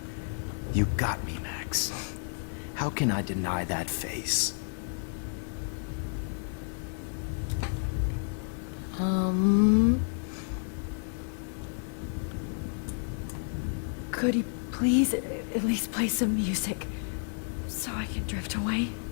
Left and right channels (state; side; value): silent; right; 57 dB below the other